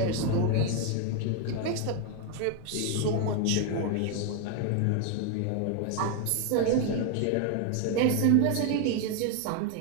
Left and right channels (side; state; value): both; different; correlation 0.01